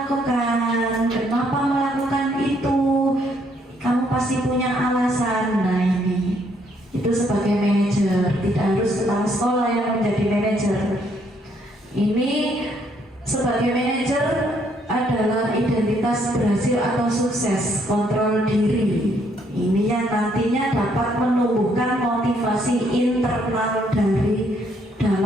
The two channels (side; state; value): both; normal; correlation 0.69